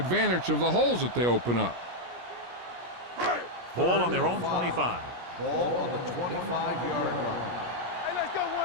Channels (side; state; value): left; late; 17 ms